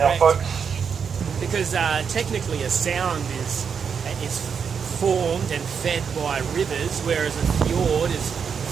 Now, folks. Because technically a sound is formed and fed by rivers, whereas a fjord is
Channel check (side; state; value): left; quieter; 6.6 dB